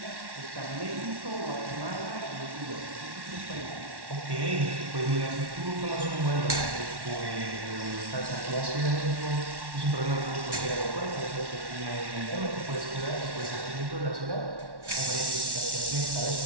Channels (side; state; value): left; late; 1.1 ms